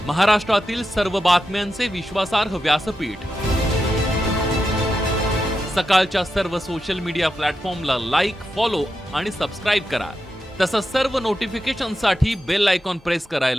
महाराष्ट्रातील सर्व बातम्यांचे विश्वासार्ह व्यासपीठ सकाळच्या सर्व सोशल मीडिया प्लॅटफॉर्मला लाईक, फॉलो आणि सबस्क्राईब करा। तसंच सर्व नोटिफिकेशनसाठी बेल आयकॉन प्रेस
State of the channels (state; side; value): normal; both; correlation 0.88